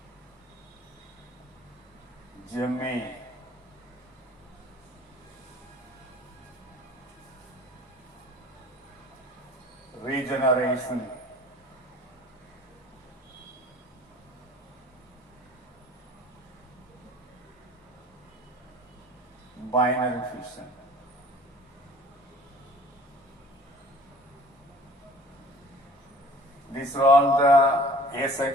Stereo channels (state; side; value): normal; both; correlation 0.49